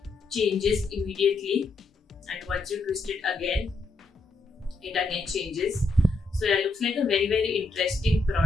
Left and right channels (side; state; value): right; quieter; 3.4 dB